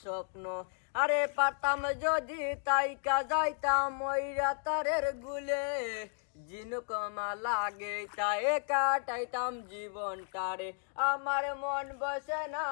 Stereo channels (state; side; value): silent; right; 55 dB below the other